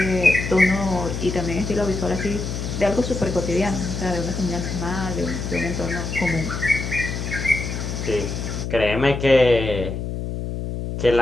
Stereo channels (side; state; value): left; noise; hum, 4 dB below the sound